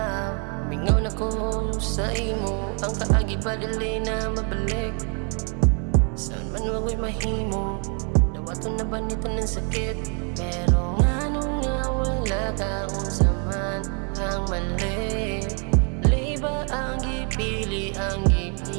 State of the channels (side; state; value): left; quieter; 38.5 dB